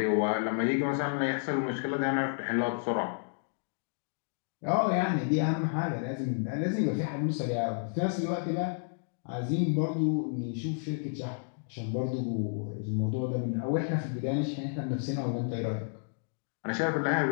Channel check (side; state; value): right; silent; digital silence